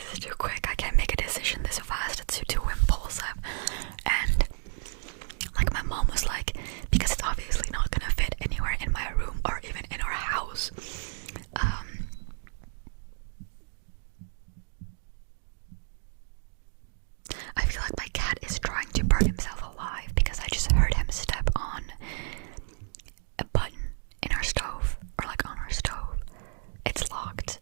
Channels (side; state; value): left; silent; digital silence